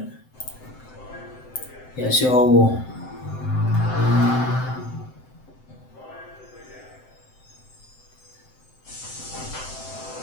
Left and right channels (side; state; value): right; late; 7.8 ms